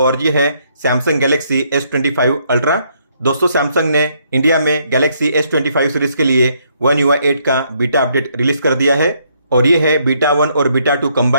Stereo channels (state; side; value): inverted; both; correlation -0.71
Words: ये है सैमसंग गैलेक्सी S25 अल्ट्रा। दोस्तों, सैमसंग ने इंडिया में गैलेक्सी S25 सीरीज के लिए One UI 8 का बीटा अपडेट रिलीज कर दिया है और ये है बीटा 1 और बीटा 2